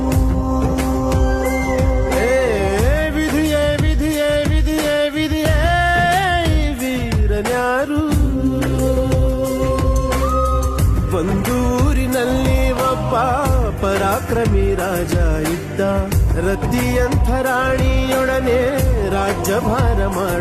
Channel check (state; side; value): identical; both; correlation 1.00